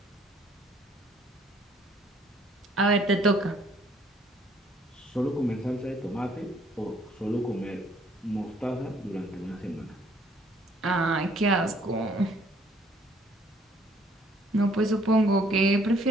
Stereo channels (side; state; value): both; normal; correlation 0.63